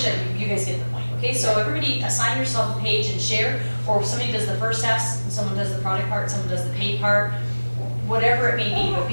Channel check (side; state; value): both; inverted; correlation -1.00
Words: it. You guys get the point, okay? So everybody assign yourself a page and share, or if somebody does the first half, someone does the product part, someone does the paid part, whatever it may be. But